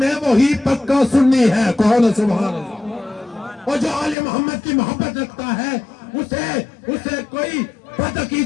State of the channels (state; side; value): drops out; right; at 4.2 s